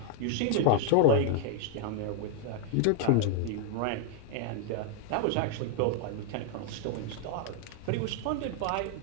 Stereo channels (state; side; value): different; both; correlation 0.00